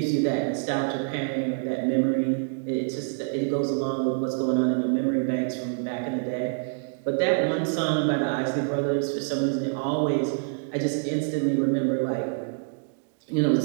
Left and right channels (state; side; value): silent; left; digital silence